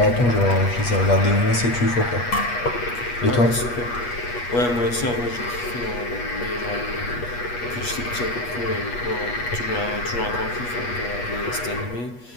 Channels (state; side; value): late; right; 8.3 ms